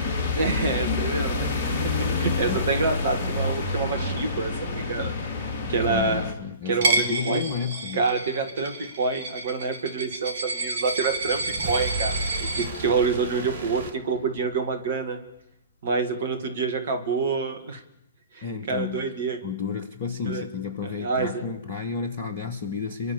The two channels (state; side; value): inverted; both; correlation -0.41